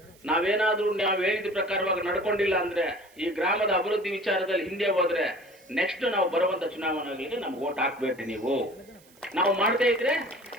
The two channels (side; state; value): right; noise; hiss, 28 dB below the sound